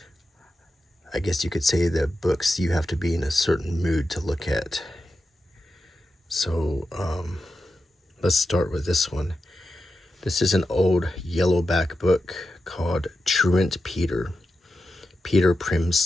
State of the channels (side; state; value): both; normal; correlation 0.90